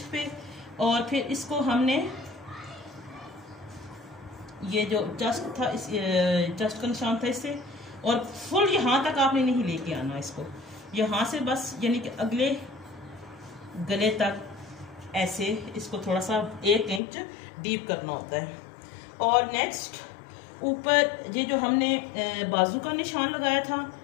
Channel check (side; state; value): right; drops out; at 17.0 s